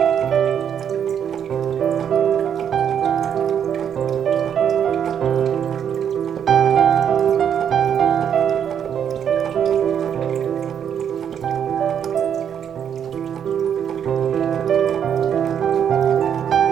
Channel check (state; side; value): quieter; left; 8.5 dB